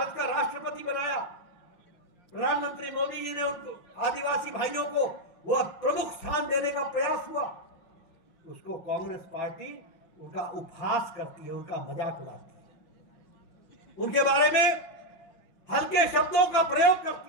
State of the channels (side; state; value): right; late; 6.1 ms